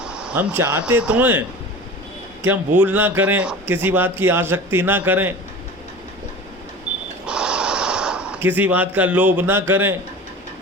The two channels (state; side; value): normal; both; correlation 0.36